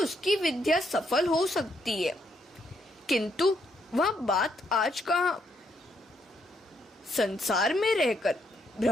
उसकी विद्या सफल हो सकती है, किंतु वह बात आज कहाँ। संसार में रहकर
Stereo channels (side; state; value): both; normal; correlation 0.75